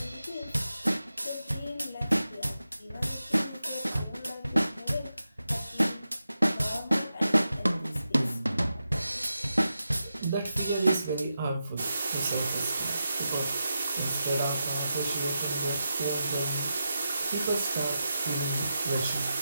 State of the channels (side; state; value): both; inverted; correlation -0.89